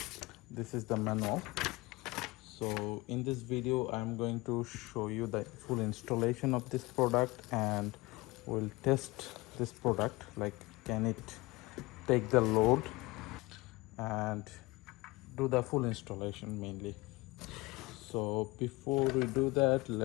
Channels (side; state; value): right; quieter; 22.5 dB